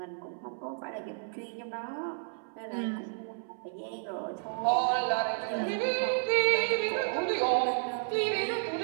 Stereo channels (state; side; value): silent; left; 57 dB below the other